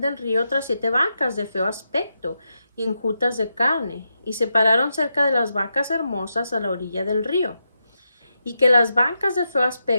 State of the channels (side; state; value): both; inverted; correlation -0.86